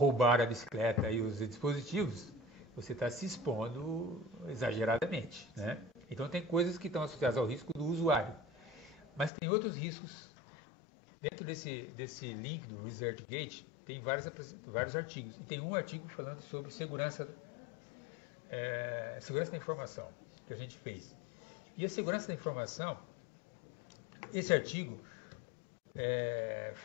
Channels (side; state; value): right; drops out; at 9.3 s